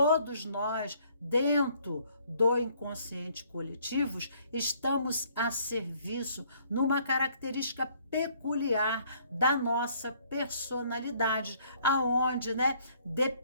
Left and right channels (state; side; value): inverted; both; correlation -0.63